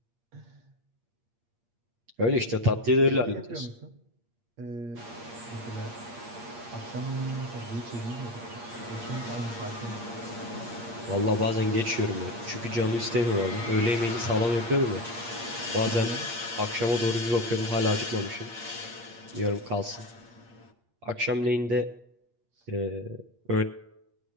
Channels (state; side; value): late; left; 8.6 ms